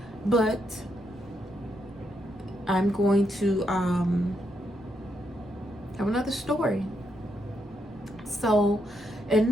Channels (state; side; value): noise; right; rumble, 25 dB below the sound